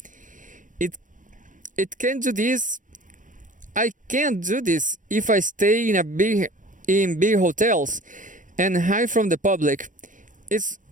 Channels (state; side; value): late; left; 0.38 ms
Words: It it can do this. I can't do this if I stay in big hotels and hide from the public. It's